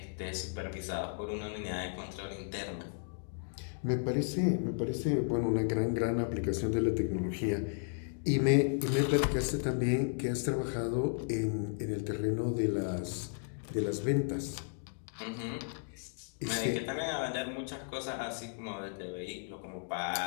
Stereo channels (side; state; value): right; silent; digital silence